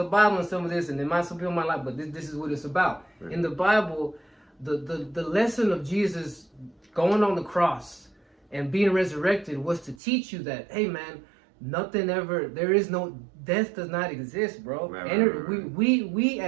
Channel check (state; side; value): drops out; left; at 10.0 s